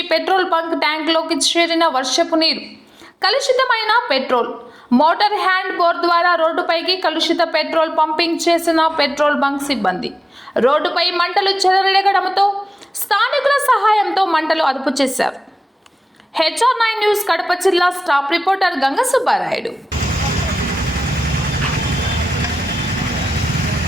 పెట్రోల్ బంక్ ట్యాంక్లోకి చేరిన వర్షపు నీరు, కలుషితమైన పెట్రోల్. మోటార్ హ్యాండ్ బోర్ ద్వారా రోడ్డుపైకి కలుషిత పెట్రోల్ పంపింగ్ చేసిన పెట్రోల్ బంక్ సిబ్బంది రోడ్డుపై మంటలు చెలరేగడంతో స్థానికుల సహాయంతో మంటలు అదుపు చేశారు. HR9 న్యూస్ కడప జిల్లా స్టాఫ్ రిపోర్టర్ గంగ సుబ్బారాయుడు.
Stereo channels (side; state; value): both; normal; correlation 0.95